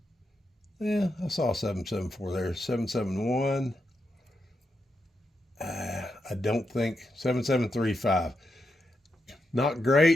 yeah, I saw 774 there. 771. I don't think 7735. Not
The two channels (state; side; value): normal; both; correlation 0.84